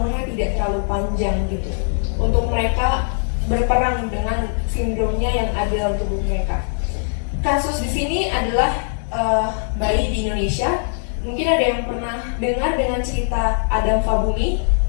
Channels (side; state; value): right; silent; digital silence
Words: tidak terlalu panjang gitu. Untuk mereka berperang dengan sindromnya yang ada dalam tubuh mereka. Kasus di sini adalah bayi di Indonesia. Mungkin ada yang pernah dengar dengan cerita Adam Fabumi?